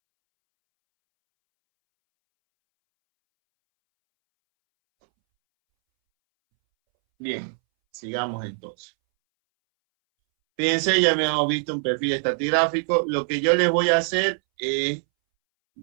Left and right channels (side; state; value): left; silent; 63 dB below the other